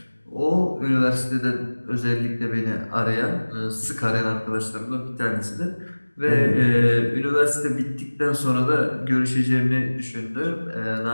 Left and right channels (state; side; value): inverted; both; correlation -1.00